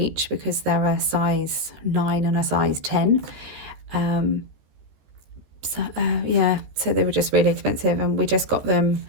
because they're a size 9 and a size 10. So they were just really expensive, and we just got them.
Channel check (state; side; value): late; left; 14 ms